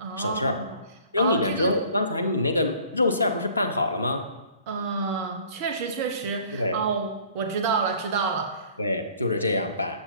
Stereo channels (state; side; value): inverted; both; correlation -0.53